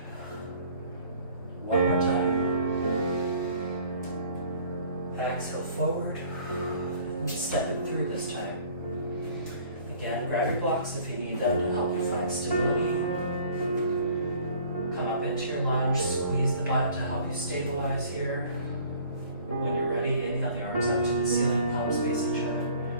One more time. Exhale forward. And step it through this time. Again, grab your blocks if you need them to help you find stability. Come up into your lunge, squeeze the butt to help you stabilize here. When you're ready, inhale the arms up to the ceiling, palms face each other.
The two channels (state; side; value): inverted; both; correlation -0.53